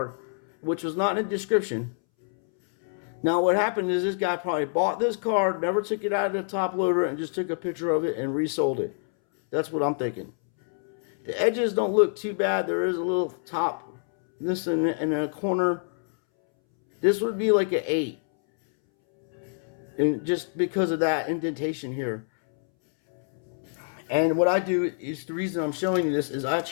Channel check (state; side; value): silent; right; 61 dB below the other